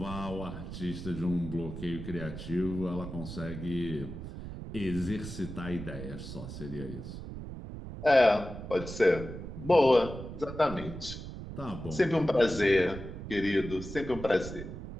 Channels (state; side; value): noise; right; rumble, 9 dB below the sound